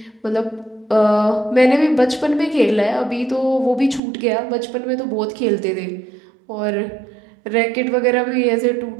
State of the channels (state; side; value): drops out; left; at 4.0 s